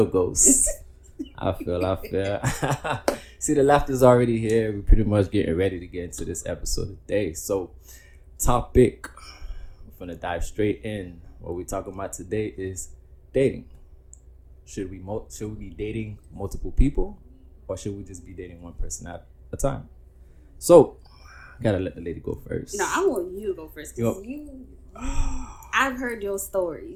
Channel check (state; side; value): identical; both; correlation 1.00